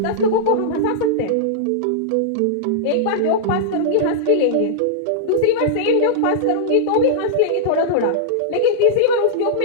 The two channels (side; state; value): both; different; correlation -0.02